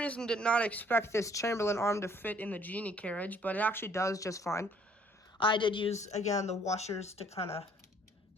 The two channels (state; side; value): normal; both; correlation 0.60